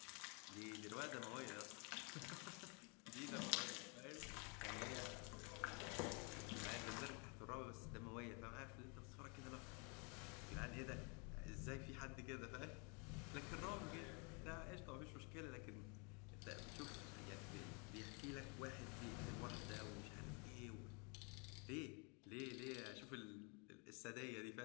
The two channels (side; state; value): right; quieter; 34.0 dB